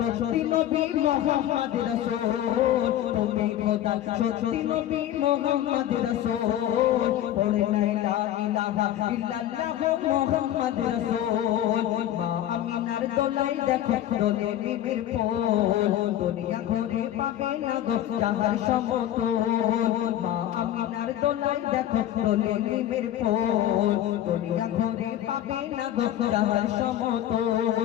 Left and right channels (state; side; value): quieter; right; 12.2 dB